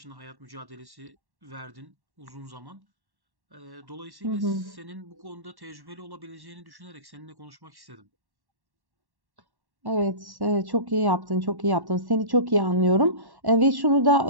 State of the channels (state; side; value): late; left; 1.1 ms